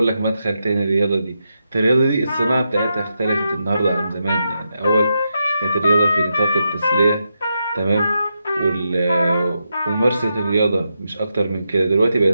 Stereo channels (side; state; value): both; inverted; correlation -0.85